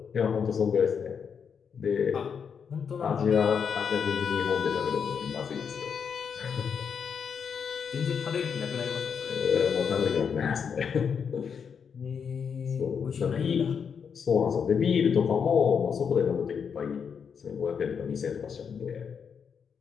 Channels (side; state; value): right; quieter; 6.7 dB